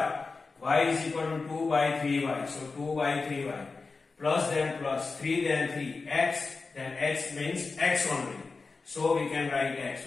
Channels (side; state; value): right; quieter; 4.2 dB